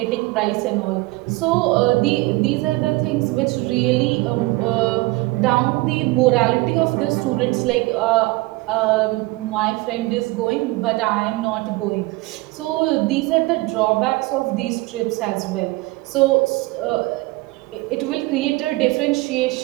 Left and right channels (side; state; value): left; quieter; 21.9 dB